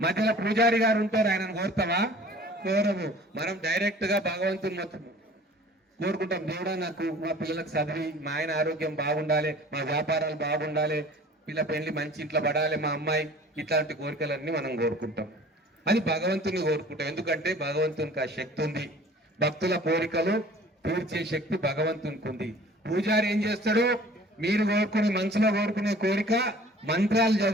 మధ్యలో పూజారి గారు ఉంటారు, ఆయనను కోరుతావా? కోరము. మనం డైరెక్ట్ గా భగవంతుని మొత్తం కోరుకుంటాం. దేవుడా, నాకు మా పిల్లలకు చదివి, మా ఆయన ఆరోగ్యం బాగుండాలి, మా వ్యాపారాలు బాగుండాలి, పిల్ల పెళ్లి మంచి ఇంట్లో పడాలి, మా అమ్మాయి, ఇట్లాంటి కోరికలన్నీ మనం కోరుకుంటాం. అది భగవంతుని కోరుకుంటాం. ఎందుకంటే భగవంతునికి ఆ శక్తి ఉంది. భక్తుల కోరికలు తీర్చే శక్తి భగవంతునికి ఉంది. పూజారి ఏం చేస్తాడు? మీరు కోరుకునే మనసులో కోరుకునే కోరిక మంత్రాలు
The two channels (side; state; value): both; normal; correlation 0.48